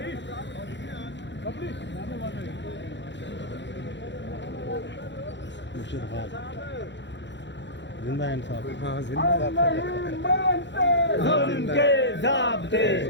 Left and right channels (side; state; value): right; late; 0.52 ms